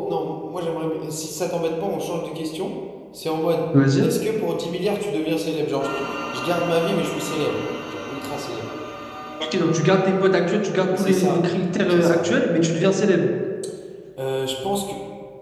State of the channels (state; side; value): identical; both; correlation 1.00